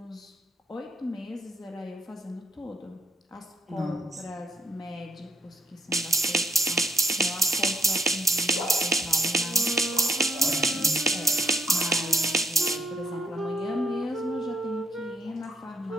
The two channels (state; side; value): normal; both; correlation 0.70